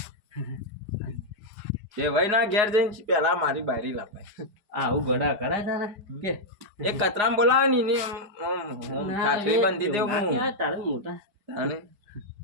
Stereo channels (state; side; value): late; left; 4.8 ms